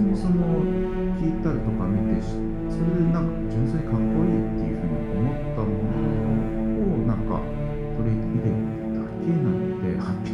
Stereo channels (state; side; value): identical; both; correlation 1.00